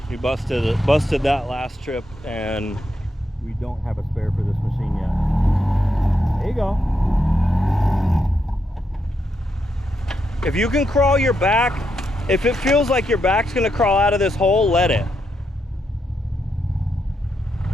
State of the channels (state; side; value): normal; both; correlation 0.82